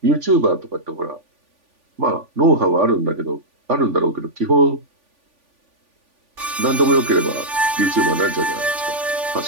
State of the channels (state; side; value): late; left; 3.5 ms